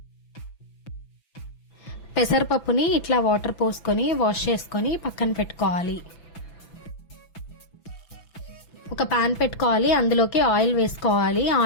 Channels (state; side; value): late; right; 6.0 ms